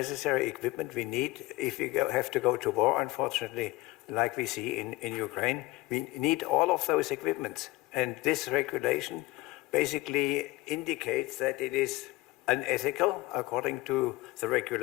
equipment we need if we have to go to war, unfortunately, like we see in Ukraine? We need all of those equipments. And this regulation basically indicates that it is unethical according to the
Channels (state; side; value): quieter; right; 19.3 dB